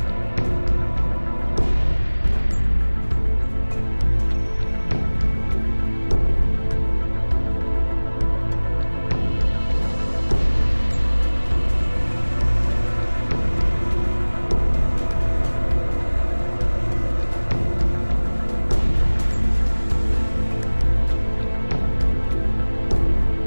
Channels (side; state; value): both; inverted; correlation -1.00